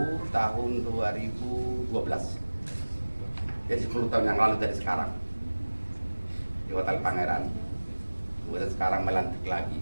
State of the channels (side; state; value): both; inverted; correlation -1.00